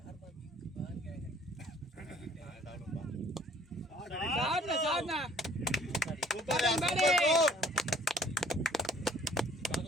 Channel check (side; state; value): both; normal; correlation 0.56